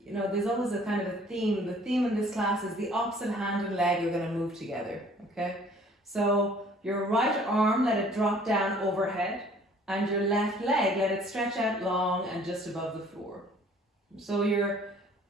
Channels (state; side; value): normal; both; correlation 0.55